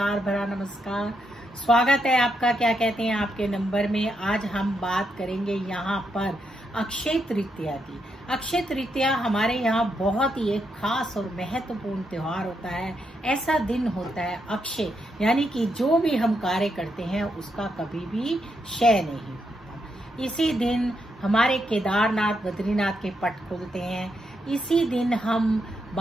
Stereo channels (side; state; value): both; normal; correlation 0.81